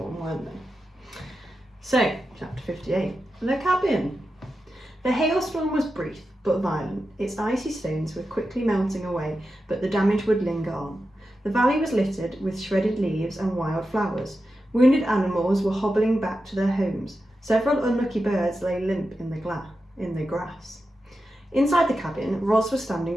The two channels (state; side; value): normal; both; correlation 0.90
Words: weren't they? So, chapter 58, the cabin. The hailstorm was brief but violent. Its icy stones were quickly melting away, but the damage would linger on. The valley was littered with shredded leaves and wild flowers. Wounded animals were hobbling back to their homes. Several unlucky birds lay limp in the grass. Inside the cabin, Ros was